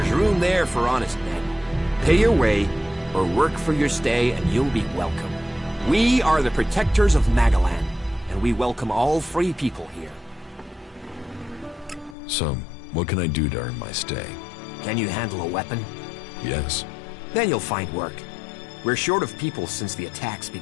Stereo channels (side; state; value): right; drops out; at 12.2 s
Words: room there for honest men. Pay your way, or work for your stay, and you'll be welcome. We are the protectors of Magalan, and we welcome all free people here. So, what can I do to earn my stay? Can you handle a weapon? Yes. Then you'll find work. We're short of people since the attacks